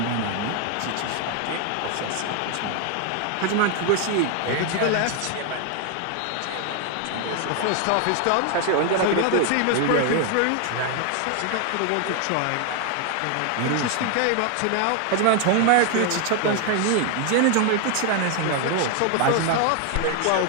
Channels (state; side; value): different; both; correlation 0.00